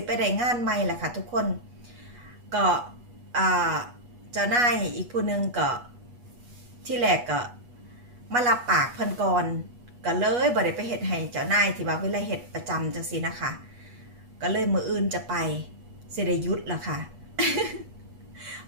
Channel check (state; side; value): late; left; 8.3 ms